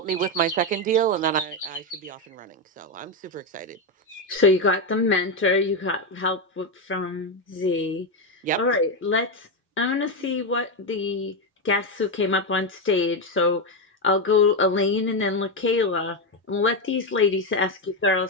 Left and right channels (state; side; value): normal; both; correlation 0.08